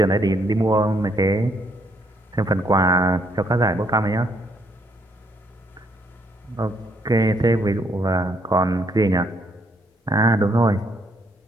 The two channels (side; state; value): both; normal; correlation 0.71